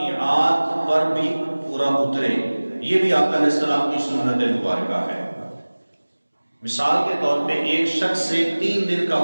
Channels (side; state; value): both; inverted; correlation -1.00